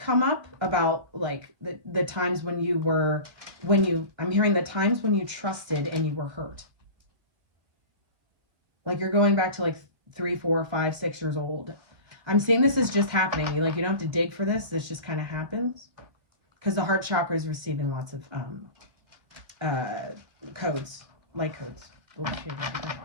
up about like the times I'm hearing the times when you trusted and you were hurt. Like you're going back to like 3, 4, 5, 6 years old. I'm seeing this is just happening. You don't have to dig for this. This just kind of happens. Because the heart chakra is receiving lots of codes, light codes.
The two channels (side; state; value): left; late; 1.8 ms